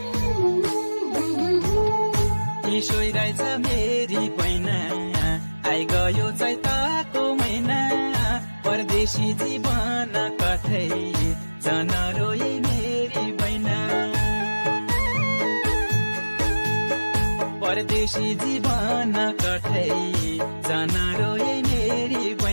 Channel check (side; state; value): both; inverted; correlation -1.00